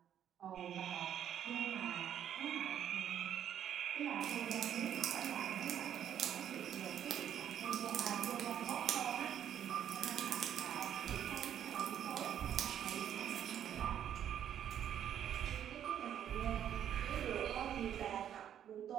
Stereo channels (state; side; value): quieter; left; 9.9 dB